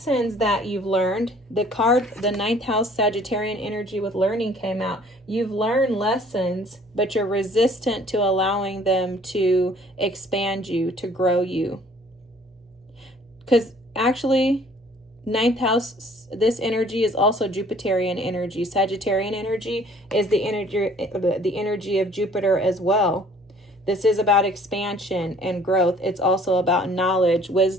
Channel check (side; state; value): both; normal; correlation 0.55